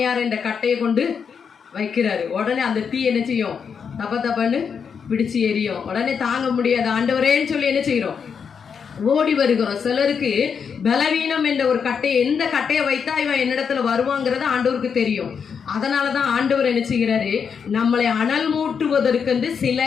இந்த கட்டையை கொண்டு வைக்கிறாரு. உடனே அந்த தீ என்ன செய்யும், தப்ப தப்பன்னு பிடிச்சு எரியும். உடனே தாங்க முடியாது, ஆண்டவரேன்னு சொல்லி என்ன செய்யறோம், ஓடி வருகிறோம். சிலருக்கு பலவீனம் என்ற ஒரு கட்டையை, எந்த கட்டையை வைத்தா இவன் என்னிடத்துல வருவாங்கிறது ஆண்டவருக்கு தெரியும். அதனாலதான் ஆண்டவர் என்ன செய்கிறாரு, நம்மளை அனல் மூட்டுவதற்கு சில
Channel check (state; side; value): quieter; right; 6.6 dB